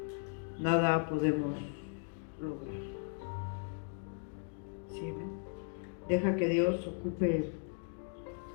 nada podemos lograr. ¿Sí? Deja que Dios ocupe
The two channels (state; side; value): silent; right; 53 dB below the other